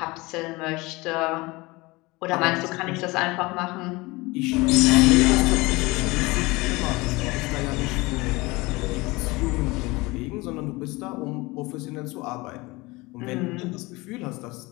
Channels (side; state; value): right; quieter; 22.9 dB